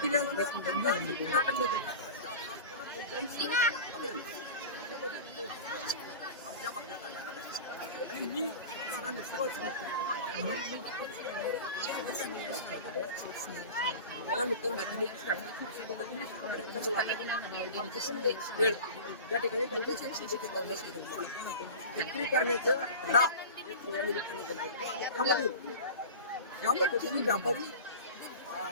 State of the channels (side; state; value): both; inverted; correlation -0.34